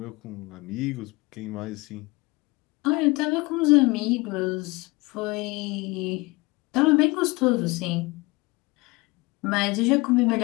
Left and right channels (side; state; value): right; quieter; 23.9 dB